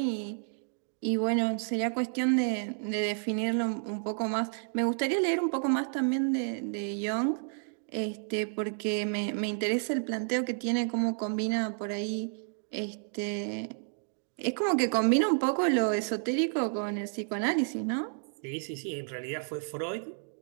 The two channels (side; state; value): left; silent; digital silence